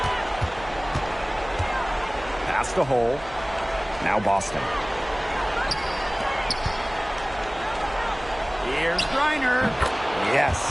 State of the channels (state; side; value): noise; right; hum, 18 dB below the sound